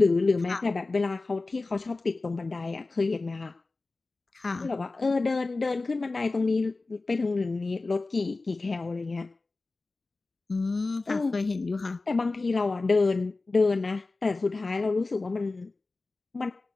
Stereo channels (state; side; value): quieter; right; 3.5 dB